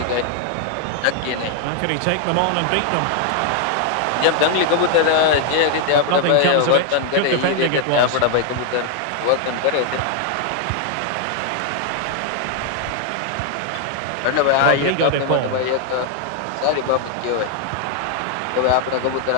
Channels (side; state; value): both; different; correlation 0.00